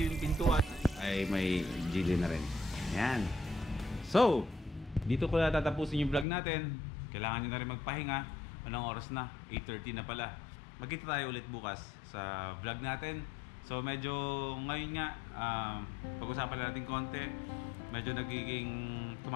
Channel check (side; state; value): right; drops out; at 6.2 s